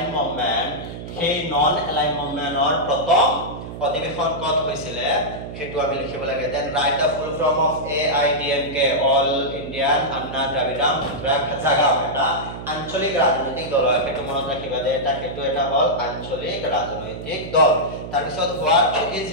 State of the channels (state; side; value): noise; right; hum, 10 dB below the sound